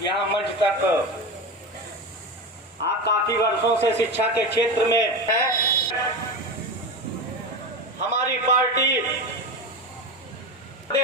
यहाँ मंच तक, आप काफी वर्षों से शिक्षा के क्षेत्र में हैं। हमारी पार्टी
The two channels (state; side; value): normal; both; correlation 0.23